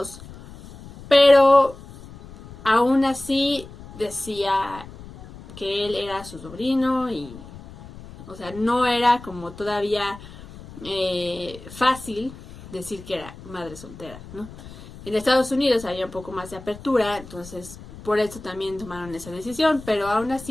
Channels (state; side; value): noise; left; rumble, 17 dB below the sound